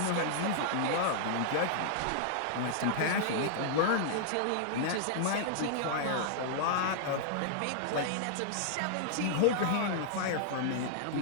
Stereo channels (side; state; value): both; different; correlation -0.01